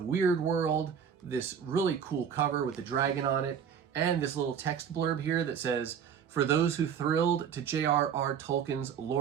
Weird World, this really cool cover with the dragon on it, and this little text blurb here that says, "For those who thrilled to J.R.R. Tolkien's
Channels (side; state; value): left; quieter; 7.7 dB